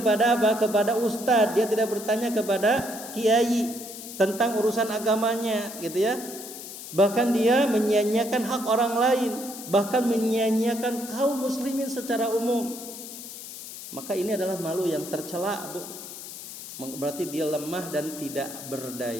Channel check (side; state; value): left; noise; hiss, 12 dB below the sound